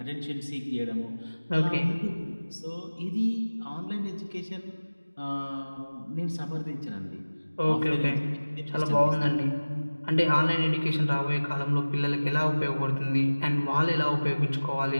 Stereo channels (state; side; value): inverted; both; correlation -1.00